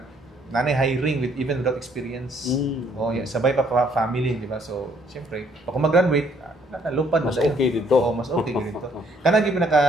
nanay hiring with even without experience. Sabay pa family, di ba? So, syempre, pag mag-graduate, nakalupad mas okay dito. Mas okay dito. Kana gyud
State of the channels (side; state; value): both; normal; correlation 0.65